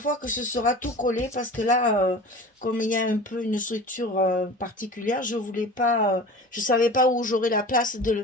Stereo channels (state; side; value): normal; both; correlation 0.37